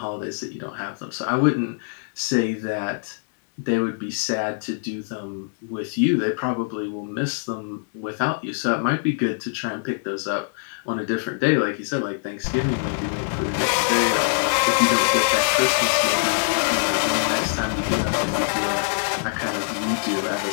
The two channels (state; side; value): silent; right; digital silence